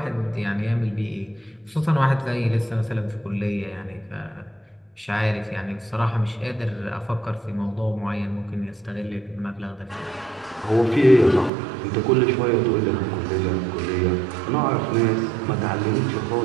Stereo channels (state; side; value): drops out; left; at 11.5 s